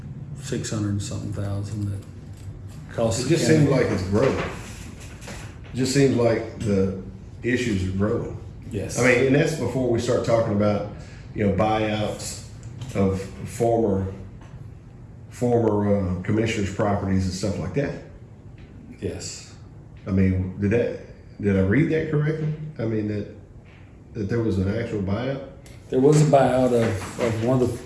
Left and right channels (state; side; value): identical; both; correlation 1.00